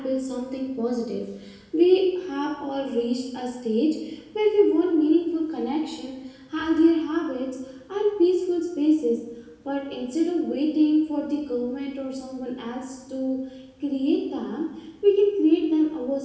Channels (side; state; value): both; identical; correlation 1.00